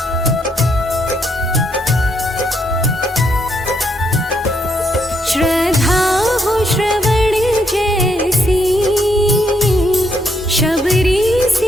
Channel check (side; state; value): both; normal; correlation 0.74